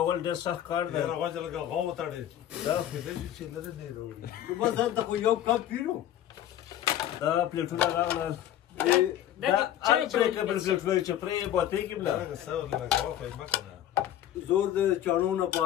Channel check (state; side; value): quieter; right; 11.6 dB